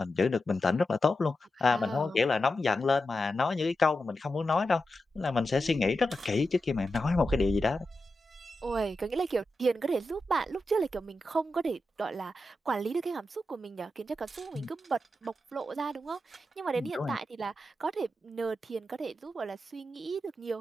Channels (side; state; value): both; normal; correlation 0.89